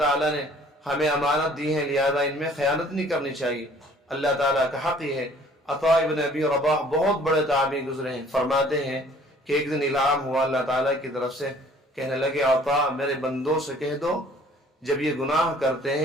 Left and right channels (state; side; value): normal; both; correlation 0.55